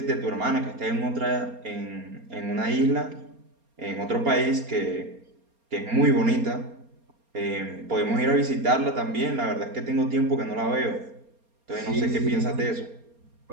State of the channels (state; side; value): late; left; 4.3 ms